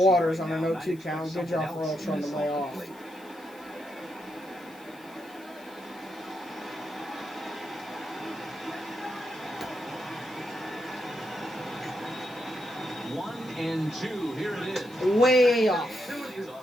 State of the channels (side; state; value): left; noise; hiss, 25 dB below the sound